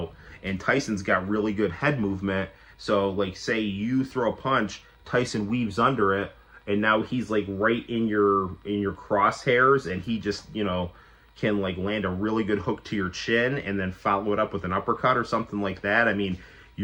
and Tyson's got really good head movement, so like say you throw a punch, Tyson weaves under it, and now he's like right in your crosshairs, and he just, you know, can like land a really good hook to your chin and then follow it up with an uppercut or something like that. I mean,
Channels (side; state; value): both; identical; correlation 1.00